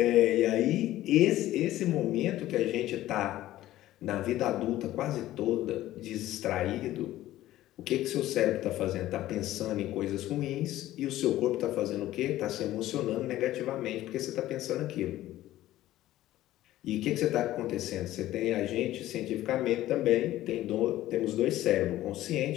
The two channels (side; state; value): right; quieter; 14.8 dB